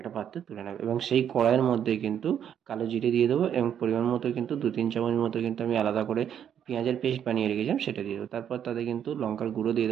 পাত্রে তুলে নেবো এবং সেই কড়াইয়ের মধ্যে কিন্তু কালো জিরে দিয়ে দেবো এবং পরিমাণ মতো কিন্তু 2-3 চামচ মতো কিন্তু আমি আলাদা করে পেঁয়াজের পেস্ট বানিয়ে রেখেছিলাম সেটা দিয়ে দেবো। তারপর তাতে কিন্তু লঙ্কার গুঁড়ো দিয়ে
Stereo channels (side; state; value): left; quieter; 9.1 dB